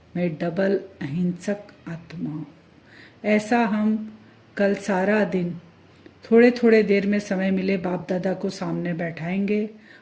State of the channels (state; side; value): identical; both; correlation 1.00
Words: मैं डबल अहिंसक आत्मा हूँ। ऐसा हम कल सारा दिन थोड़े थोड़े देर में समय मिले बाप दादा को सामने बैठाएंगे,